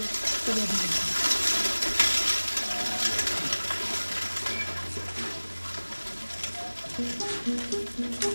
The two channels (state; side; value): inverted; both; correlation -1.00